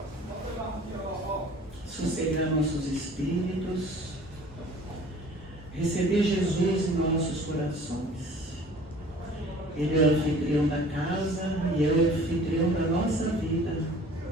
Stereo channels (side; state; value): both; normal; correlation 0.48